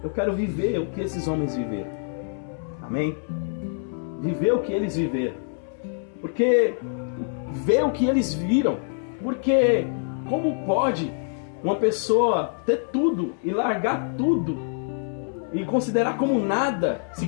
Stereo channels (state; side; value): silent; right; 61 dB below the other